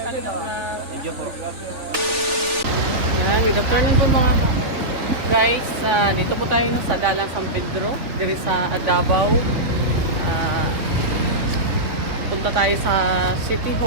Thank you po. Ayan, good afternoon po mga guys. Dito po tayo sa Dalan San Pedro, diri sa Davao. Punta tayo sa City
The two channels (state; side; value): late; left; 3.4 ms